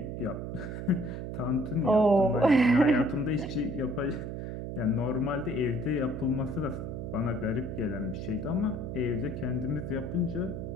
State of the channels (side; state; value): right; noise; hum, 6 dB below the sound